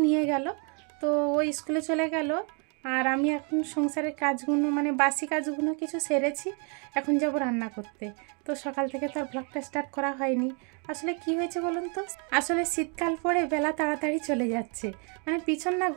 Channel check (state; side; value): quieter; left; 36.6 dB